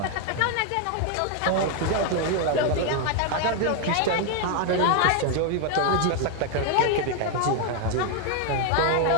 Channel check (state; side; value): different; both; correlation 0.01